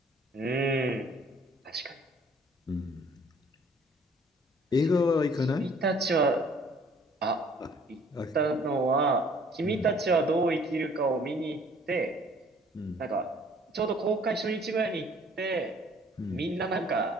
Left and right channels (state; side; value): normal; both; correlation 0.57